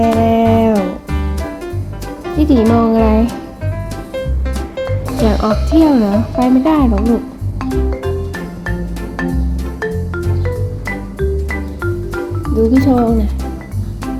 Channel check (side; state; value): both; identical; correlation 1.00